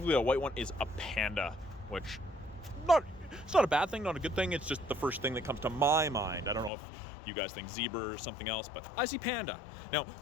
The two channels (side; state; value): right; drops out; at 6.7 s